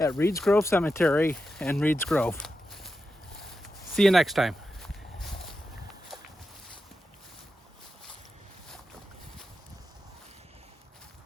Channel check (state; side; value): normal; both; correlation 0.89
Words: Reed's Grove Cemetery and Reed's Grove. See you next time.